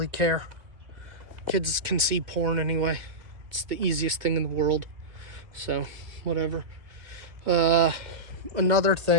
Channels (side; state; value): left; late; 2.2 ms